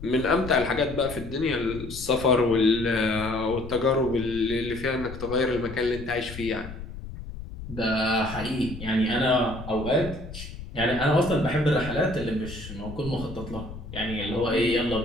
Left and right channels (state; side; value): noise; left; rumble, 12 dB below the sound